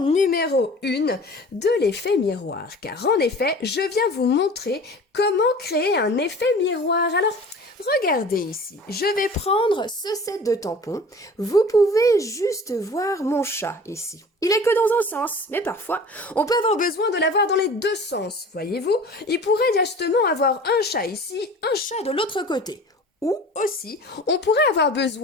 1 de l'effet miroir. Car en effet, je viens vous montrer comment créer un effet miroir. Alors, regardez ici, je vais prendre ce set de tampons. Vous pouvez juste voir mon chat ici. Il est que dans un sens, mais parfois, on peut avoir besoin de l'avoir dans les deux sens, voyez-vous. Il pourrait justement avoir un chat ici, un chat de l'autre côté. Ou aussi, on pourrait avoir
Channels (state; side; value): normal; both; correlation 0.42